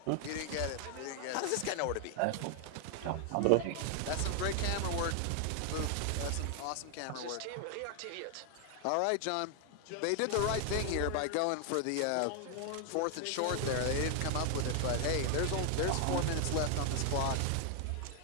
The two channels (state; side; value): different; both; correlation 0.00